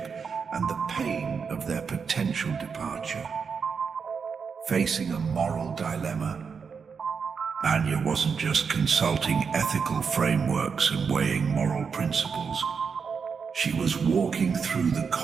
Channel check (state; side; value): quieter; left; 5.9 dB